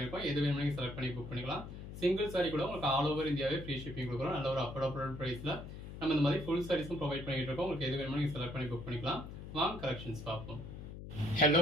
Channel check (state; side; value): noise; left; hum, 11 dB below the sound